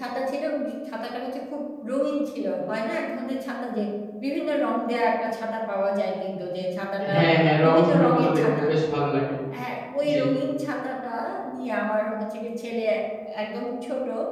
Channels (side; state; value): both; identical; correlation 1.00